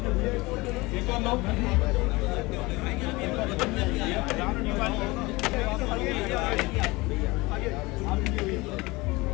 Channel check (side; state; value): right; quieter; 22.7 dB